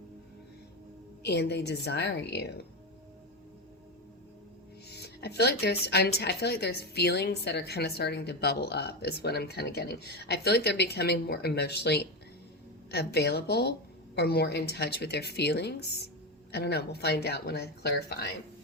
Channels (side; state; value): both; normal; correlation 0.15